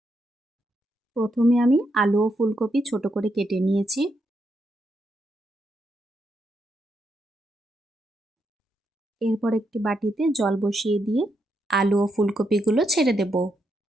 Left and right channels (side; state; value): both; normal; correlation 0.80